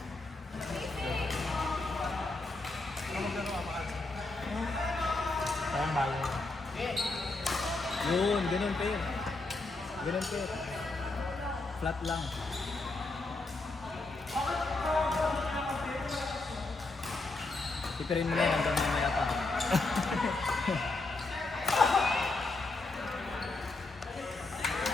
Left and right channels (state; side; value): quieter; right; 3.2 dB